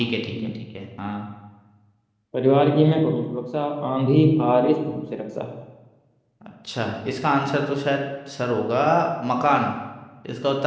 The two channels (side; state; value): both; identical; correlation 1.00